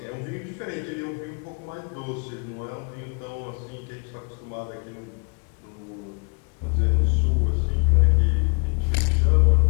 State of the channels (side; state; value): right; quieter; 35.9 dB